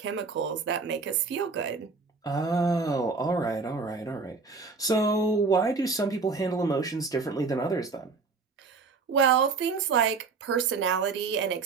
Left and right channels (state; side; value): quieter; left; 4.5 dB